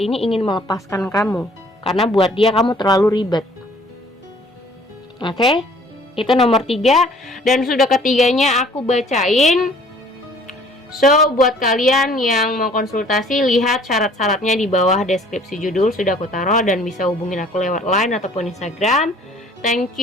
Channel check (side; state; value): both; normal; correlation 0.55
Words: ini ingin melepaskan kamu. Karena buat dia kamu terlalu ribet. Oke? Itu nomor 3. Dan sudah ketiganya aku bacain. So, buat kalian yang mau konsultasi, lihat syarat-syaratnya di bawah deskripsi judul sudah aku taruh, dan bisa hubungin aku lewat Line ataupun Instagram. Thank